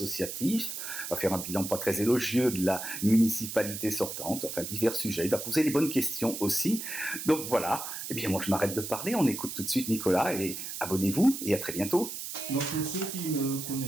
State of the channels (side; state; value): right; noise; hiss, 7 dB below the sound